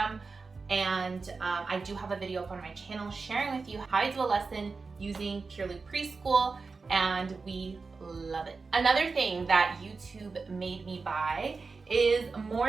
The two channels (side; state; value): left; quieter; 4.4 dB